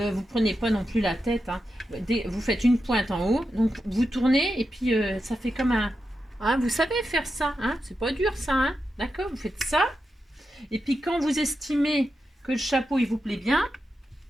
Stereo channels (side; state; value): both; normal; correlation 0.88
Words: prenez pas non plus la tête, hein. Vous faites une pointe en haut, donc vous tournez et puis ça fait comme un... Hein, vous savez faire ça, hein, c'est pas dur ça, hein, d'accord, vous faites ça. Et puis quand vous estimez que le chapeau il vous plaît bien,